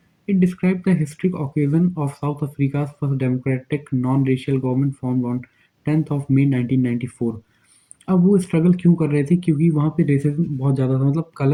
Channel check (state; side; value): identical; both; correlation 1.00